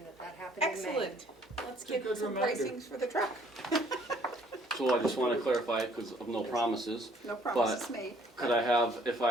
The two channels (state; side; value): normal; both; correlation 0.61